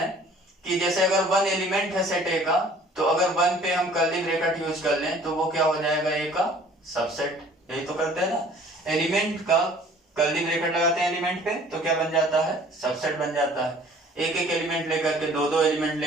कि जैसे अगर 1 एलिमेंट है सेट ए का, तो अगर 1 पे हम कर्ली ब्रैकेट यूज कर लें तो वो क्या हो जाएगा, ए का सबसेट। यही तो करते हैं ना, एलिमेंट का कर्ली ब्रैकेट लगाते हैं एलिमेंट पे तो क्या बन जाता है, सबसेट बन जाता है। एक एक एलिमेंट लेकर के, दो दो एलिमेंट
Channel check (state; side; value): normal; both; correlation 0.52